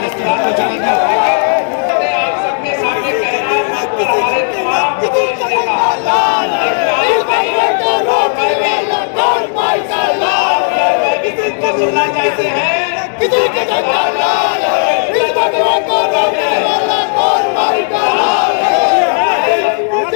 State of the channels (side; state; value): right; silent; 63 dB below the other